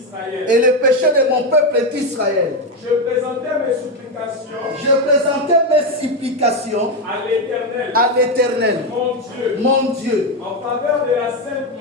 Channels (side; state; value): both; normal; correlation 0.09